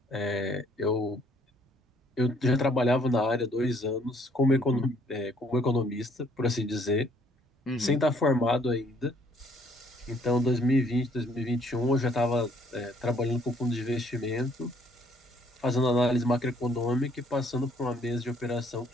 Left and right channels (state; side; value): normal; both; correlation 0.64